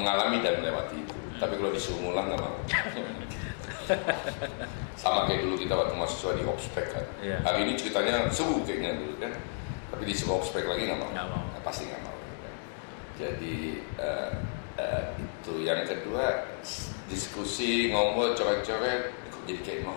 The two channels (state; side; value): silent; right; digital silence